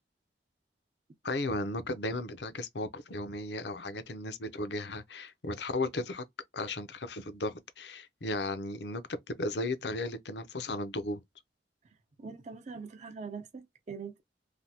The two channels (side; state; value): both; normal; correlation 0.29